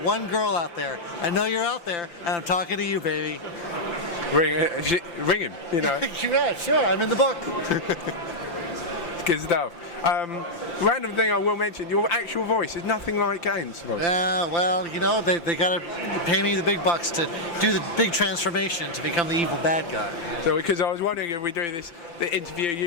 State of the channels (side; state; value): right; late; 5.8 ms